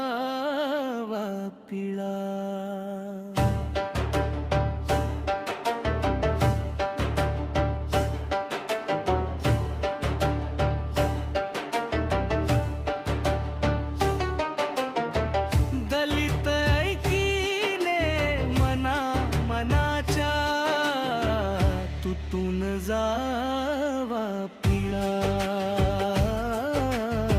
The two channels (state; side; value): identical; both; correlation 1.00